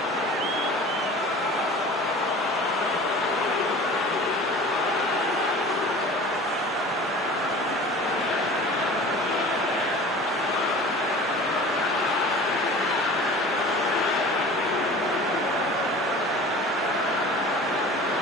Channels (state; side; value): normal; both; correlation 0.41